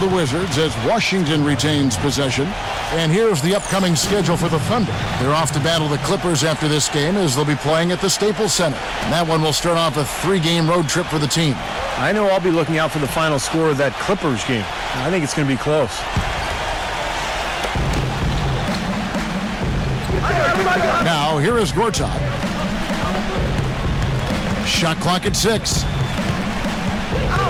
the Wizards as Washington retains possession. And here's the upcoming schedule for the Thunder. They're off to battle the Clippers after this game as they'll be playing at the Staples Center. And that one will start off a 3-game road trip for the team. I know I'll be looking out for the final score of that Clippers game. I think it's going to be close. Now, here is Gortat. Shot clock at 6.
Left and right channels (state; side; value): identical; both; correlation 1.00